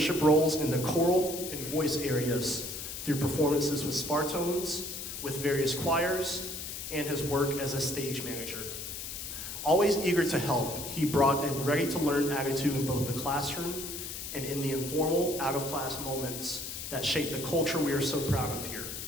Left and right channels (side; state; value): left; noise; hiss, 7 dB below the sound